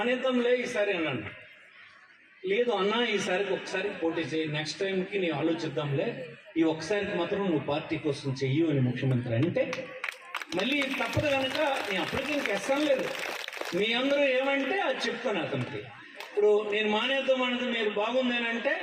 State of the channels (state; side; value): identical; both; correlation 1.00